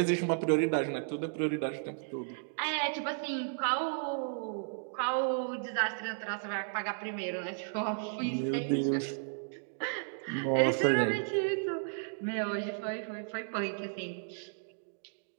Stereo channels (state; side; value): silent; left; digital silence